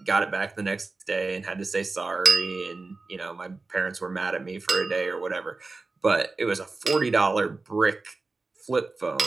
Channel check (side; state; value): left; quieter; 3.7 dB